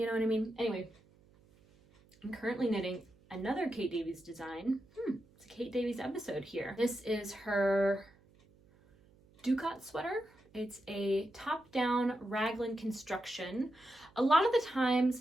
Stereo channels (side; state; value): right; noise; hum, 29 dB below the sound